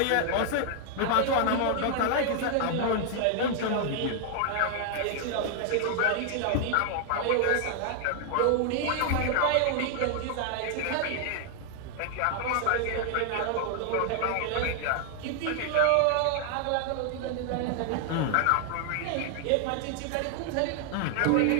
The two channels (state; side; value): different; both; correlation 0.00